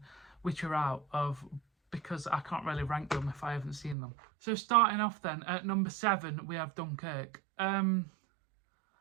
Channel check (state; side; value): drops out; left; at 4.0 s